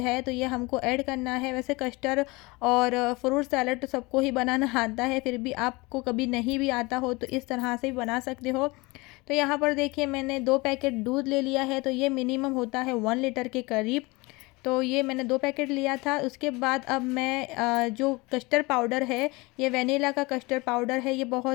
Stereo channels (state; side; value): quieter; right; 24.2 dB